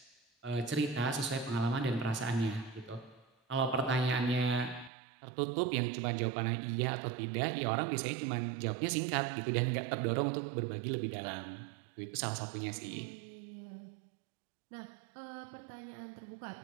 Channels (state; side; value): drops out; left; at 4.9 s